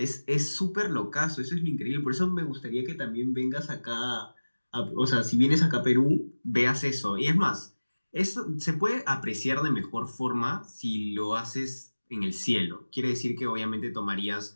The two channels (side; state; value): both; inverted; correlation -1.00